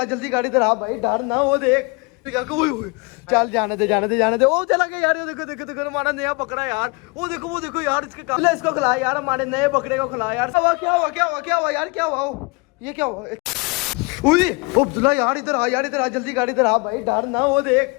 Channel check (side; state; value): right; quieter; 29.1 dB